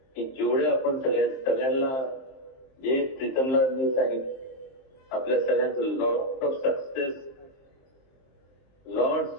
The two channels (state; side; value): late; right; 22 ms